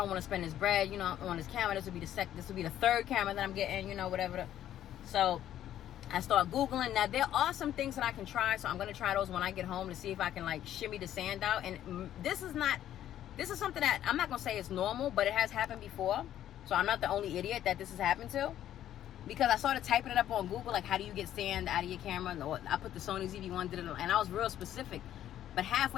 want to spend this bread, on this camera. This would be the third camera that I'm getting, whatever. So I start Googling. Now, there are some things that I can try. So I'm going to try those when I get home to see if I can, like, shimmy the sand out. And this is something that I'm not going to say it's normal, but it has happened before. So I'm not the only idiot that this has happened to. Because I started typing it up on Google, like, how do you get sand out of your camera? I put the Sony ZV-1, did it, and I was real specific. But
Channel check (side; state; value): right; quieter; 11.7 dB